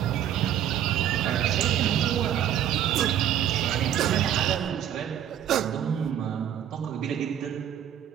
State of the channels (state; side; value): quieter; left; 10.4 dB